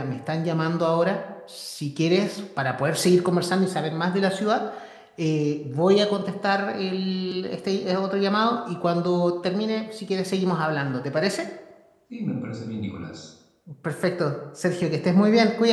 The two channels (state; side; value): identical; both; correlation 1.00